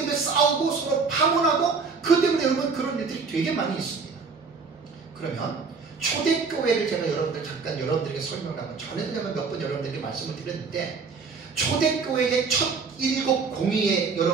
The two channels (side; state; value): left; quieter; 4.9 dB